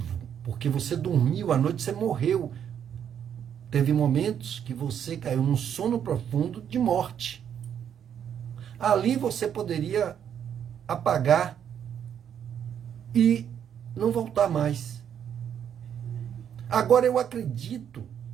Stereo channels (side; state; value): left; quieter; 8.8 dB